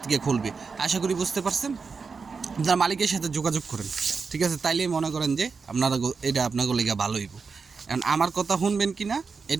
থেকে খুলবে। আশা করি বুঝতে পারছেন। আপনার মালিকের সাথে যোগাযোগ করেন, ঠিক আছে? তাইলেই মনে করেন যে এটা আপনাদের লেগে ভালো হইব। কারণ আমার কথা শুনবেন কি না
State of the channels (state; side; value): quieter; left; 5.1 dB